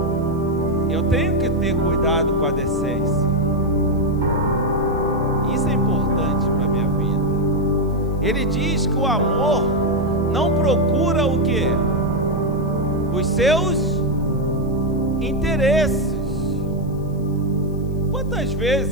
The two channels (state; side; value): noise; left; hiss, 30 dB below the sound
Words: eu tenho que ter cuidado com a decência. Isso é importante para a minha vida. Ele diz que o amor não procura o quê? Os seus interesses. Quantas